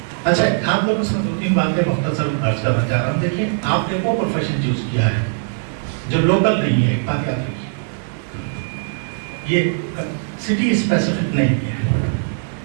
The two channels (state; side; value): silent; left; 56 dB below the other